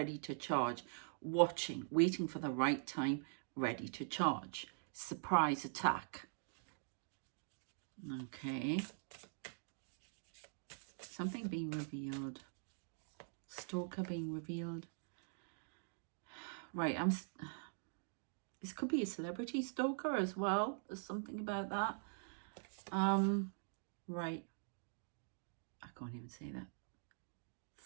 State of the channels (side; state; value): left; silent; digital silence